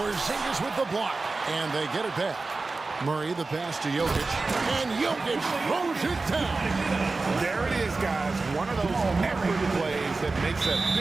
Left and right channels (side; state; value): left; quieter; 3.7 dB